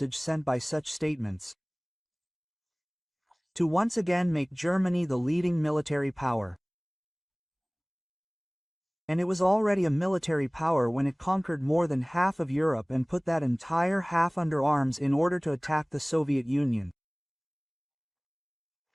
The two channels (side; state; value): both; identical; correlation 1.00